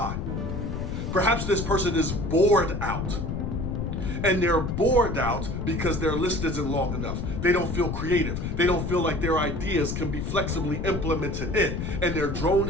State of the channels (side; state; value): left; noise; rumble, 4 dB below the sound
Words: Perhaps this person is bored out. And they're bored out because their list isn't long enough. They don't feel creative. They don't feel like their ideas can be flexibly implemented in. And they're